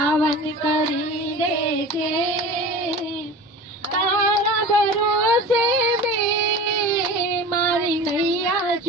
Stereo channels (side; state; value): both; normal; correlation 0.36